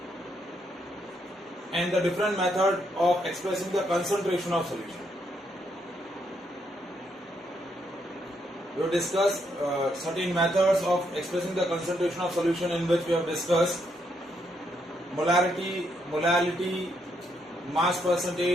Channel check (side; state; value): both; normal; correlation 0.76